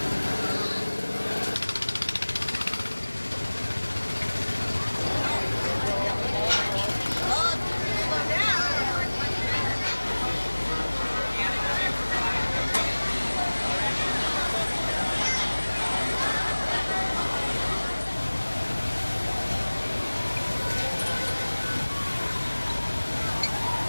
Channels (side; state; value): both; inverted; correlation -1.00